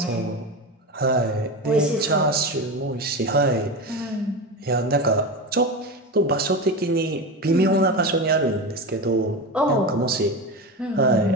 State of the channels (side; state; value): both; normal; correlation 0.21